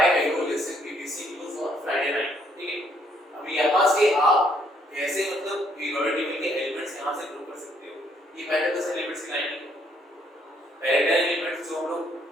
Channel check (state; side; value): normal; both; correlation 0.68